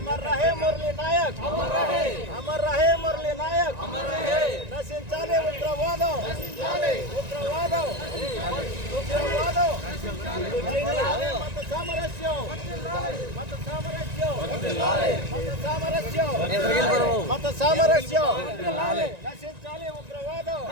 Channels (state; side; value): late; left; 1.9 ms